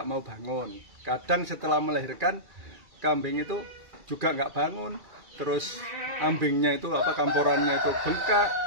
mau bangun. Kadang setelah melahirkan kambing itu juga nggak bangun. Terus ambingnya itu kamporannya itu bengkak.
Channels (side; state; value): left; late; 2.3 ms